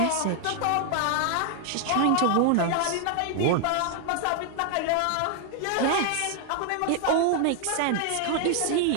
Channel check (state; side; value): different; both; correlation 0.00